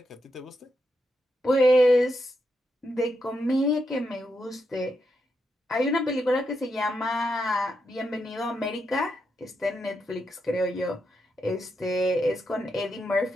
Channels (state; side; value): normal; both; correlation 0.83